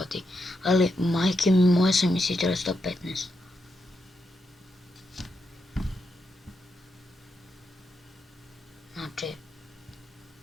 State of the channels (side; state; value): both; normal; correlation 0.84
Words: ali majke mi moje sam isto trebao 115. Znači,